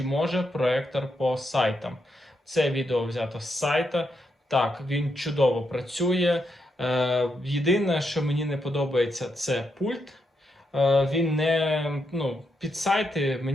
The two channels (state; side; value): normal; both; correlation 0.81